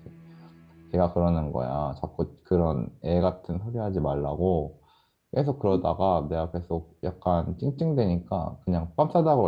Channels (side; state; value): both; identical; correlation 1.00